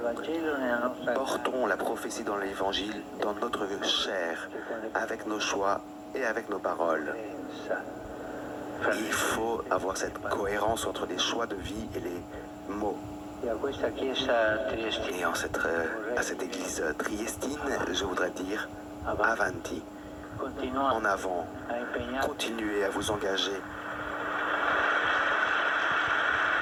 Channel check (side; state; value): both; identical; correlation 1.00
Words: Portons la prophétie dans l'Évangile, dans notre chair, avec nos choix et avec nos paroles. Il faut avoir cette cohérence entre les choix de vie et les mots. Et à cette église triestine, je voudrais dire avanti, en avant, continuez à vous engager.